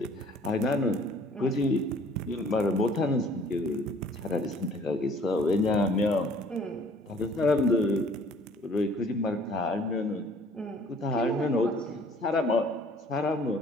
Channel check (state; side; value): normal; both; correlation 0.55